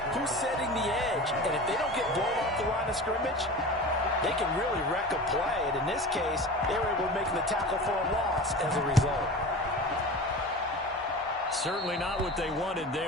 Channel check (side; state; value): both; normal; correlation 0.33